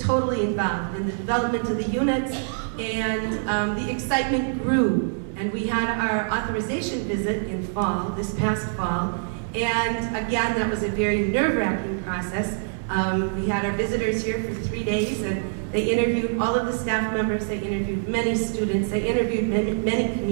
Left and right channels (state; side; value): silent; left; digital silence